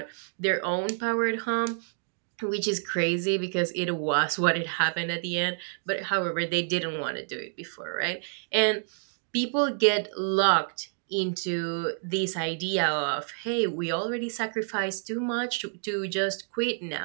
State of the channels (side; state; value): left; silent; digital silence